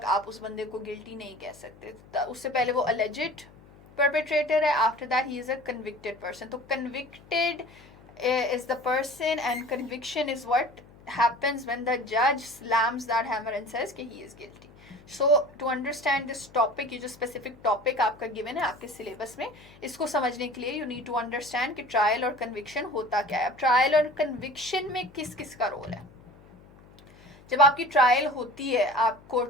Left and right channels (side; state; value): left; noise; hum, 24 dB below the sound